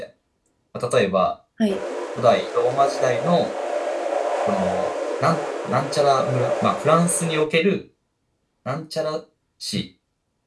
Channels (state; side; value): identical; both; correlation 1.00